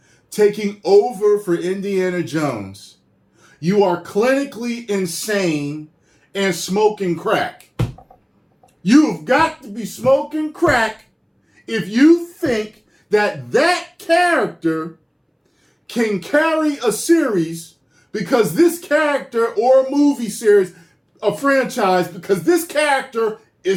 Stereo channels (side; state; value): both; identical; correlation 1.00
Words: taking over for Indiana Jones, you are clinically insane and smoking crack. You've got to be smoking crack if you think that character can carry a series because this character, or a movie series, a franchise, because this character